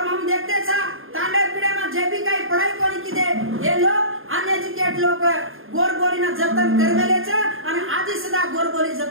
हम देखते छा तांडे पीड़े में जे भी काही पढ़ाई कोनी की दे ये लोग अनएजुकेट लोग गोर बोली न जतन करवेले छ आणि आजी सदा गोर बोली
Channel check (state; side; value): late; left; 0.60 ms